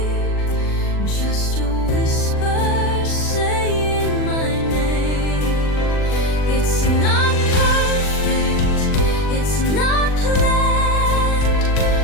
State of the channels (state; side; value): late; right; 39 ms